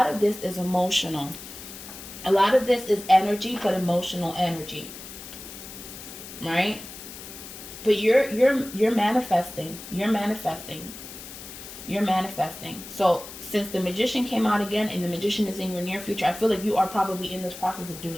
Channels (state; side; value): noise; left; hiss, 13 dB below the sound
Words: of this is emotional. A lot of this is energy, but emotional energy. Right? But you're manifesting. You're manifesting. You're manifesting. So since the Magician came out again and the Magician is in your near future, I feel like you are probably in this process of